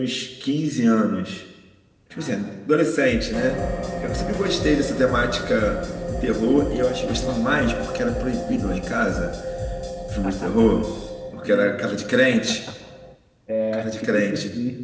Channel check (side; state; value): both; identical; correlation 1.00